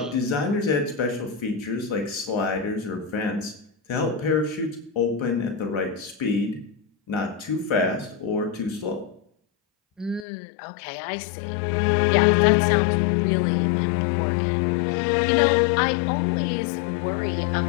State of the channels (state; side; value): drops out; right; at 10.2 s